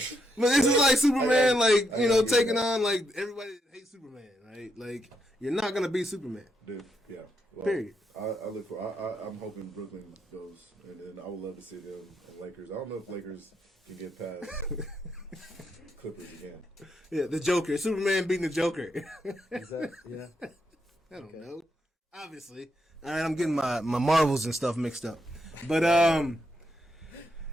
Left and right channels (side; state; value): both; normal; correlation 0.80